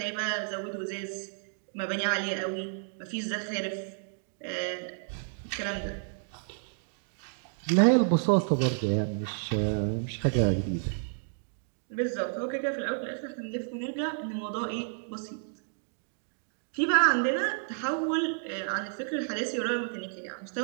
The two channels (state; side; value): silent; left; digital silence